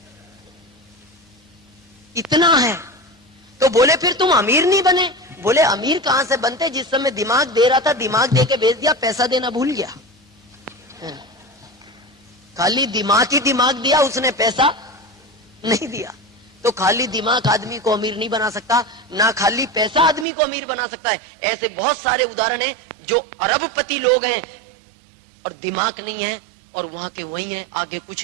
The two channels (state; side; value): drops out; left; at 20.2 s